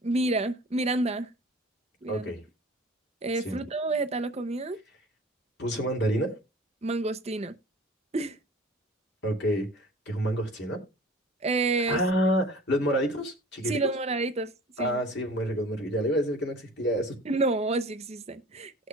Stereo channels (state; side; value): normal; both; correlation 0.44